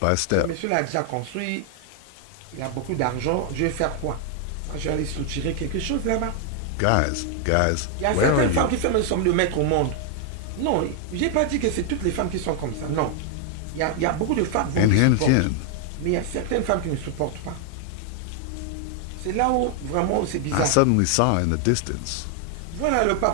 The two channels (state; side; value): different; both; correlation 0.00